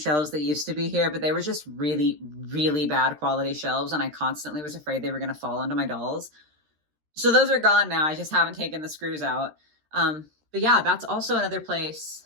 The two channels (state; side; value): late; left; 13 ms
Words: that used to be here, but they were just really, really bad quality shelves, and I constantly was afraid they were going to fall onto my dolls. So those are gone now. I just haven't taken the screws out. But yeah, that's also another